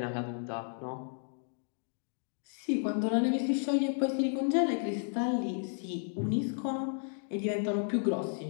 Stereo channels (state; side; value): silent; right; digital silence